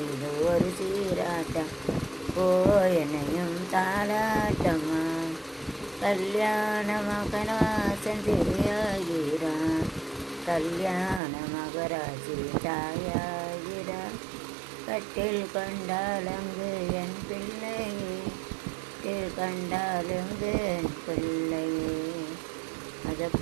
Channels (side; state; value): left; drops out; at 11.2 s